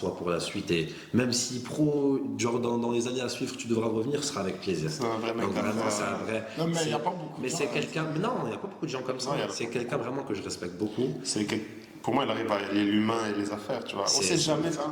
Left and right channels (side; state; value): both; identical; correlation 1.00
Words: pour la suite, et même si genre dans les années à suivre, tu devras revenir, ce sera avec plaisir. C'est un vrai mec. Donc vraiment, c'est un vrai. Non, mais il n'y a pas beaucoup. Mais c'est quelqu'un. Mais non, il n'y a pas beaucoup de gens comme ça. C'est quelqu'un vraiment que je respecte beaucoup. Pour moi, il arrive à allier l'humain et les affaires, tu vois. On ne sait jamais ce qui